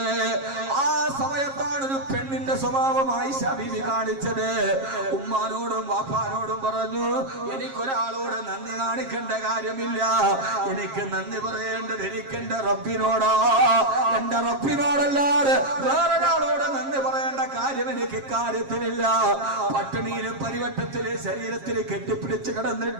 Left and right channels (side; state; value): left; late; 7.4 ms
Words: ആ സമയത്താണ് ഒരു പെണ്ണിന്റെ സ്വഭാവം ആയിഷ ബീവി കാണിച്ചത്. ഉമ്മാനോടും വാപ്പാനോടും പറഞ്ഞു, എനിക്കൊരാളോട് നന്ദി കാണിക്കേണ്ട കാര്യമില്ല. എനിക്ക് നന്ദി പറയേണ്ടത് എനിക്കെന്റെ റബ്ബിനോടാ. എന്റെ റബ്ബിനോടല്ലാതെ വേറൊരാളോട് നന്ദി പറയേണ്ട കാര്യം എനിക്ക് കാര്യത്തിലില്ല. പട്ടിണിയിലും പരിവട്ടത്തില് ശരീരത്തിൽ കെട്ടിപ്പിടിച്ച്